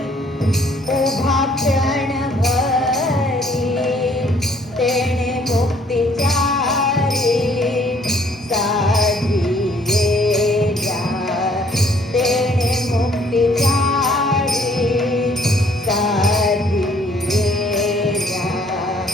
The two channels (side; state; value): both; normal; correlation 0.62